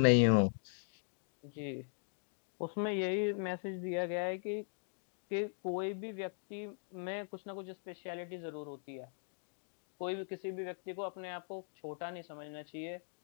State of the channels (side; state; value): right; silent; digital silence